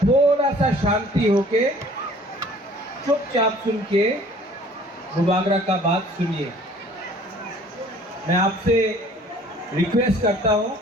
सा शांति होके चुपचाप सुन के बुबागरा का बात सुनिए। मैं आपसे रिक्वेस्ट करता हूं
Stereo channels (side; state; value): both; normal; correlation 0.53